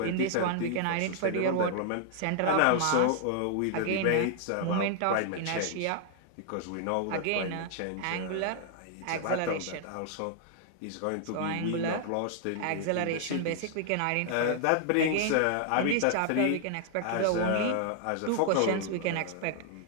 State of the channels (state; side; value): different; both; correlation 0.00